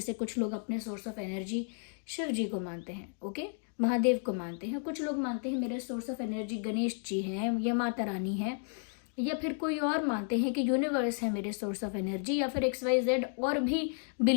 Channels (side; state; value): right; silent; 56 dB below the other